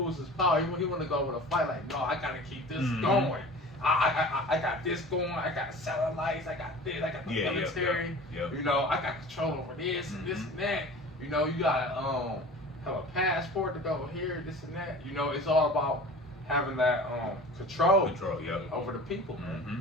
his power. He want to go with a fight like, no, I gotta keep this Mhm. going. I got this going. I got satellites. I got this. I got the military. Yep. You know, I got control over this and this and that. You know, you gotta have a passport to go here, this and that. You know, it's all about having that control Yep. over the people, man. Mm-hmm.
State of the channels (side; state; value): both; normal; correlation 0.40